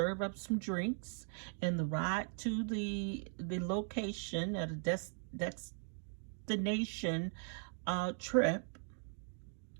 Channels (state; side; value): silent; left; 52 dB below the other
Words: up some drinks, and the ride to the location at a destination trip,